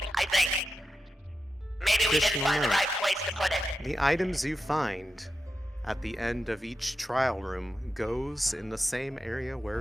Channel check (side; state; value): both; normal; correlation 0.88